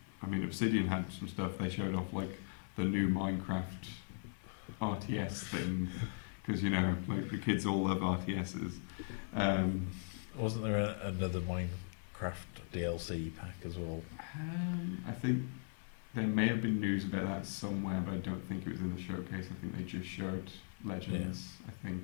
I mean, Obsidian had some stuff. They showed off like the new Minecraft RTS thing, because like the kids all love RTSs. Wasn't there another Minecraft DLC pack as well? I think there may have been news about that somewhere, but I don't think it was in the showcase. I think they just showed Legends, I think,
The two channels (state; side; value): silent; right; 52 dB below the other